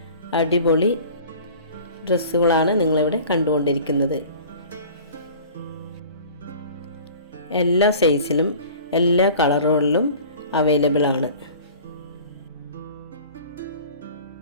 അടിപൊളി ഡ്രസ്സുകളാണ് നിങ്ങളിവിടെ കണ്ടുകൊണ്ടിരിക്കുന്നത്. എല്ലാ സൈസിലും എല്ലാ കളറുകളിലും അവൈലബിൾ ആണ്.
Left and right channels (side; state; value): both; inverted; correlation -0.44